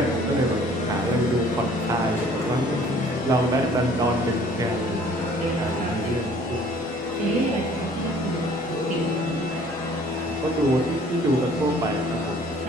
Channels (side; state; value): both; normal; correlation 0.54